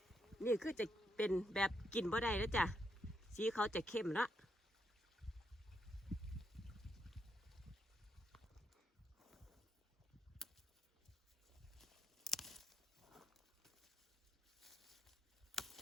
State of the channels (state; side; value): normal; both; correlation 0.80